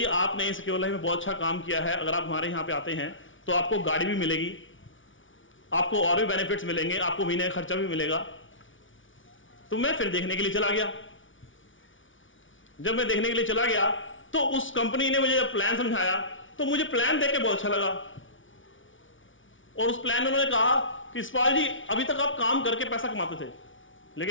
आपने सिक्योर लाइफ में बहुत अच्छा काम किया है, अगर आप हमारे यहां पे आते हैं तो आपको गाड़ी भी मिलेगी, आपको और भी बेनिफिट्स मिलेंगे, आपको महीने का खर्चा भी मिलेगा। तो मैं फिर देखने के लिए चला गया। जब मैं देखने के लिए चला गया तो उस कंपनी ने मुझे जब प्लान समझाया तो मुझे प्लान देख के बहुत अच्छा लगा, और उस प्लान में उन्होंने कहा कि यशपाल जी अभी तक आप काम करके पैसा कमाते थे,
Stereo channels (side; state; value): right; late; 0.56 ms